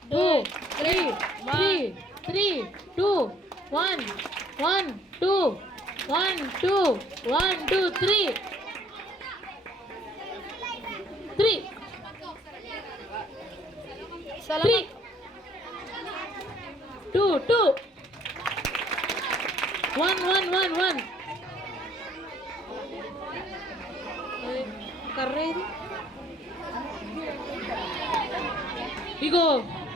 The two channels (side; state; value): both; normal; correlation 0.61